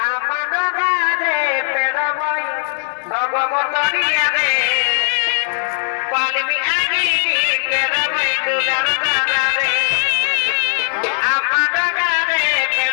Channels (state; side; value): silent; right; digital silence